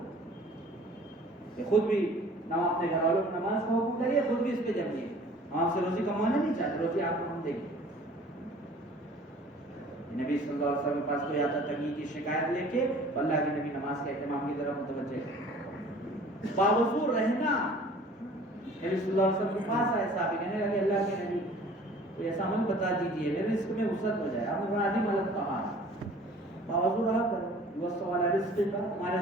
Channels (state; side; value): normal; both; correlation 0.49